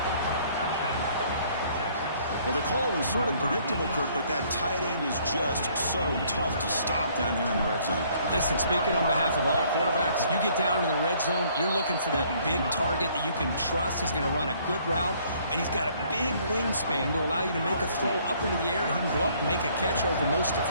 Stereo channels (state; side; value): inverted; both; correlation -0.62